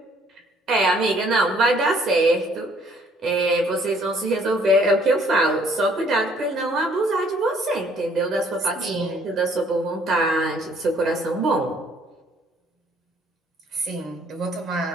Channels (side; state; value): both; normal; correlation 0.62